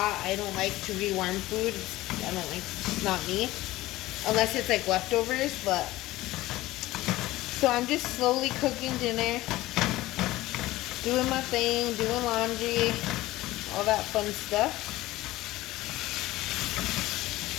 I don't like to rewarm food. It's not me. Unless it's like leftovers, but. So I'm just slowly cooking dinner. Doing my thing, doing laundry, all that fun stuff.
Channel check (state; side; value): quieter; right; 17.4 dB